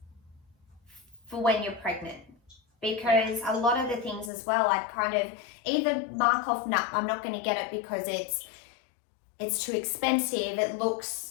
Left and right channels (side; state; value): right; drops out; at 4.3 s